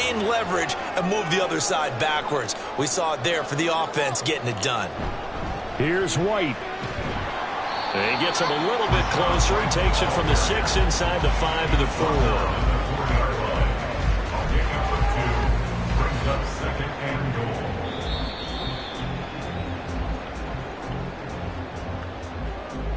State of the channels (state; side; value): identical; both; correlation 1.00